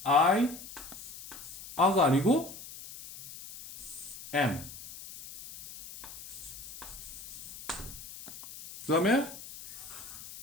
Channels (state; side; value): noise; left; hiss, 14 dB below the sound